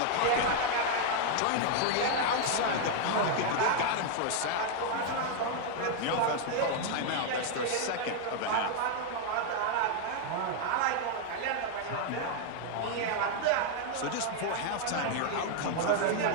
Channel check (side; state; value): both; different; correlation 0.00